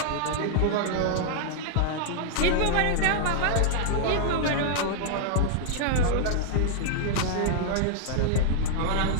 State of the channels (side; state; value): both; different; correlation -0.01